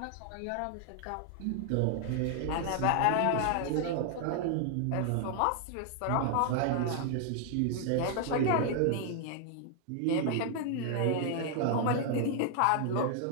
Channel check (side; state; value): both; different; correlation 0.00